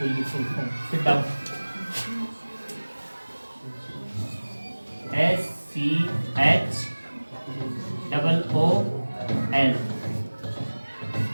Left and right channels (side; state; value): both; inverted; correlation -1.00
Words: की full form. Sit down. SCHOOL